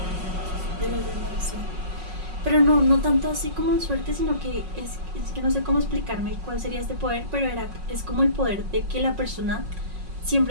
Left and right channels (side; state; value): left; late; 5.4 ms